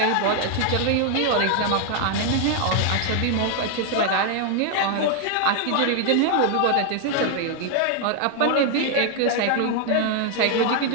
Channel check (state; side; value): different; both; correlation 0.00